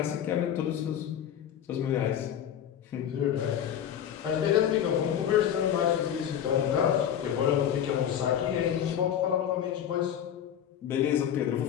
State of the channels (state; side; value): quieter; right; 9.6 dB